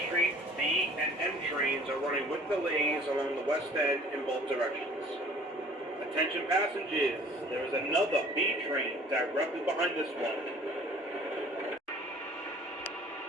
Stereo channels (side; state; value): both; normal; correlation 0.51